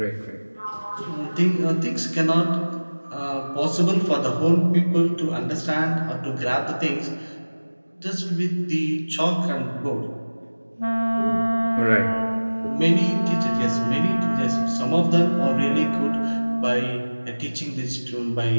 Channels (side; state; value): both; inverted; correlation -1.00